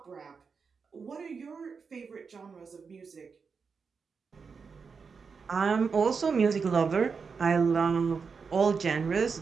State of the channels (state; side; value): quieter; left; 5.4 dB